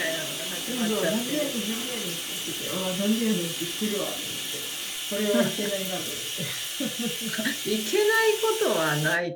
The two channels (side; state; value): both; identical; correlation 1.00